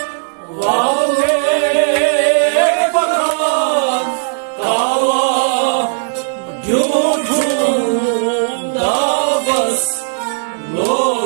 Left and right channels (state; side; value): silent; left; digital silence